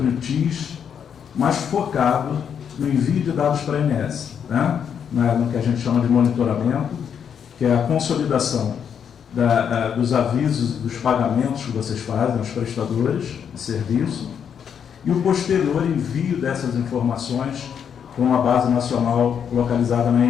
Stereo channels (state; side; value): quieter; right; 7.8 dB